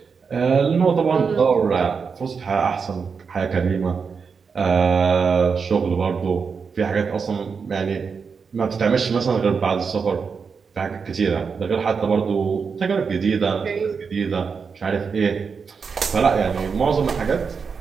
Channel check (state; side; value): quieter; left; 5.6 dB